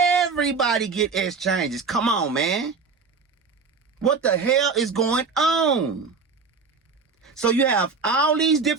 get exchanges. Come on, man. What the hell is going on? So you have all these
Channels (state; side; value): quieter; left; 4.9 dB